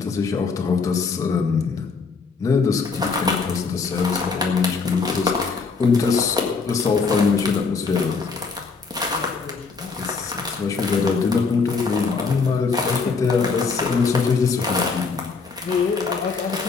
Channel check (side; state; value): right; quieter; 4.7 dB